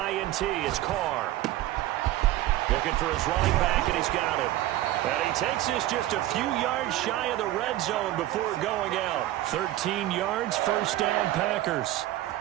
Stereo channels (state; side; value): quieter; left; 15.1 dB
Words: it's Carr. Looking for his running back, and he's got him. And he takes this just a few yards shy of the red zone before going out. 13 yards, first down Packers.